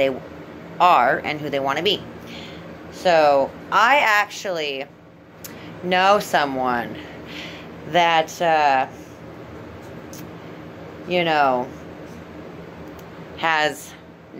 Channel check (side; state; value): both; identical; correlation 1.00